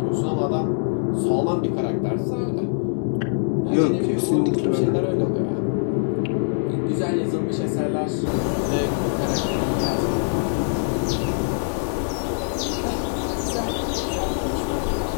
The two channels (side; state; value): right; silent; digital silence